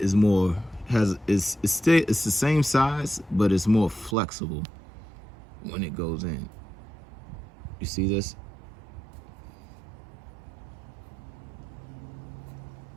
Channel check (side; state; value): left; drops out; at 4.2 s